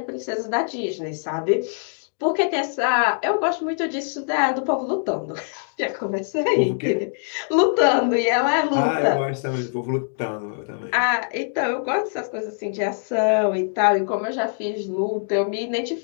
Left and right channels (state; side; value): silent; right; digital silence